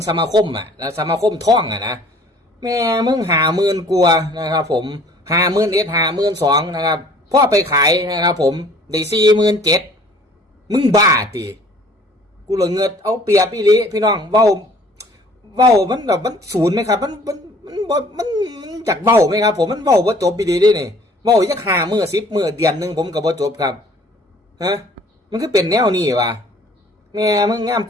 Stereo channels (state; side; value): normal; both; correlation 0.54